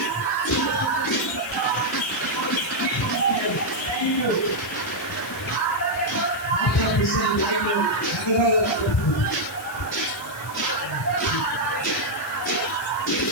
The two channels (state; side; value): noise; left; hiss, 16 dB below the sound